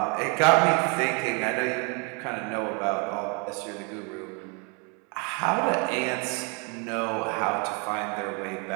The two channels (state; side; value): quieter; left; 33.7 dB